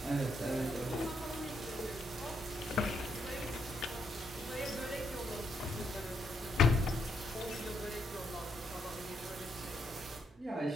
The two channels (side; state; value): both; normal; correlation 0.76